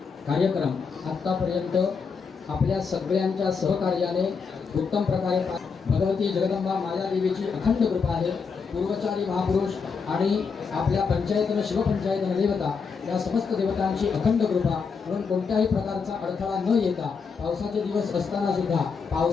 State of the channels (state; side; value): quieter; right; 5.5 dB